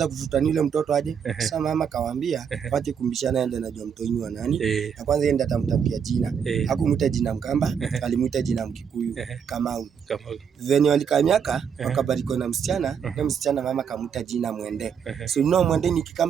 kuvutania yule mtoto aje. Sasa mama kawaambia, wache kumbishana yeye anajua mtoto ni wa nani. Na kwanza yeye ndiye atamtafutia jina. Hakumuita jina Mkamba, alimuita jina Mkikuyu, Kamau. Venye walikamiaka wakabariko na msichana, na msichana mama kamuita jina Mwende. So Mwende ni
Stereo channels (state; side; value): quieter; left; 7.3 dB